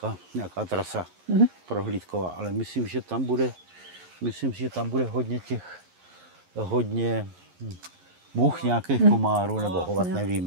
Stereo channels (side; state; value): left; late; 11 ms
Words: nějaká trasa prohlídková, ale myslím, že tam bude hodně much nějakých komárů nebo hovat,